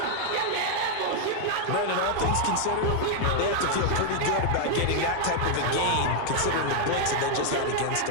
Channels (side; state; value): both; different; correlation 0.00